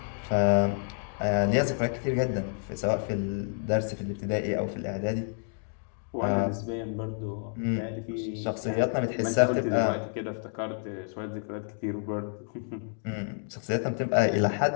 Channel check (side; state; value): right; silent; 58 dB below the other